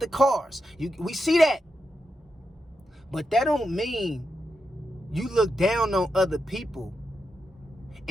cars. We see that. But that don't mean you look down on other people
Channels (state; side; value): normal; both; correlation 0.86